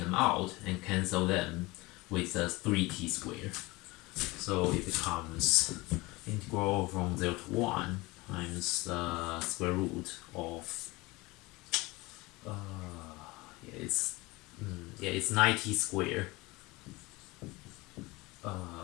out and cancel them with the 3t squared. So it becomes integral from 0 to 1 times the square root of it's 9t squared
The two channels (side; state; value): right; quieter; 22.4 dB